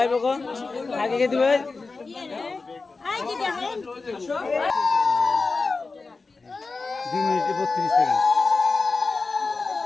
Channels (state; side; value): quieter; right; 4.0 dB